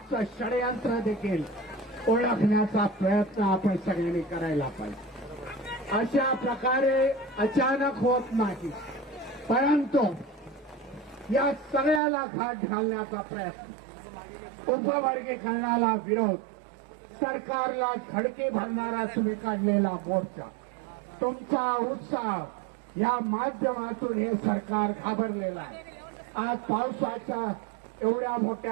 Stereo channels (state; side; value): drops out; left; at 12.0 s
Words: षडयंत्र देखील ओळखण्याचा प्रयत्न आपण सगळ्यांनी करायला पाहिजे. अशा प्रकारे अचानक होत नाही, परंतु या सगळ्याला घाट घालण्याचा प्रयत्न, उपवर्गीकरणाला विरोध, सरकारला धडके भरणारा तुम्ही काढलेला मोर्चा, तुमचा उत्साह या माध्यमातून हे सरकार घाबरलेलं आहे. आज पावसाच्या एवढ्या